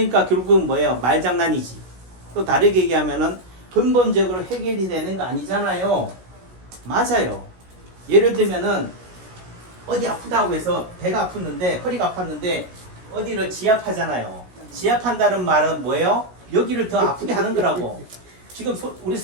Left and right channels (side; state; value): left; late; 16 ms